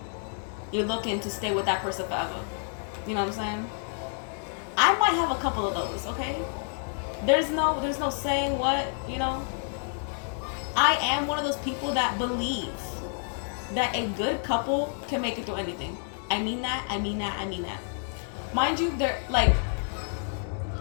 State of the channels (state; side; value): silent; right; 59 dB below the other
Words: you're looking to stay with that person forever. You know what I'm saying? I might have a couple of those, okay? There's no saying what, you know? I am one of those people that believe that a good couple can make it through anything. I mean that. Mind you, they're, like,